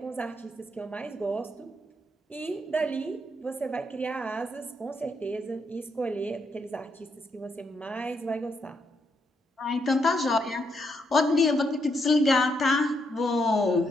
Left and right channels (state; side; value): normal; both; correlation 0.78